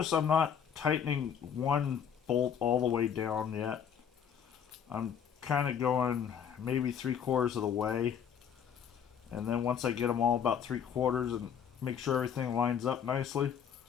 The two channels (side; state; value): right; quieter; 8.1 dB